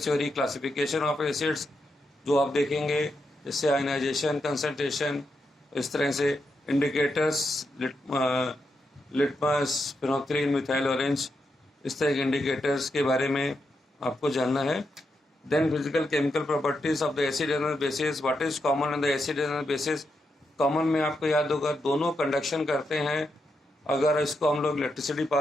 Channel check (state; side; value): normal; both; correlation 0.84